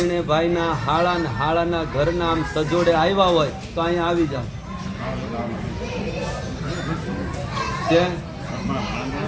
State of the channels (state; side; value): identical; both; correlation 1.00